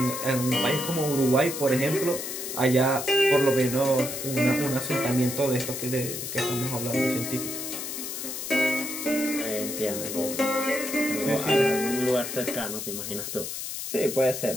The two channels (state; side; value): noise; left; hiss, 6 dB below the sound